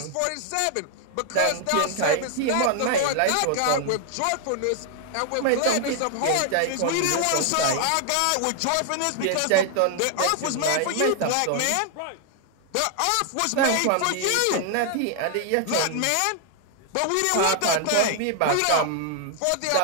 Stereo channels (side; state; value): both; different; correlation 0.00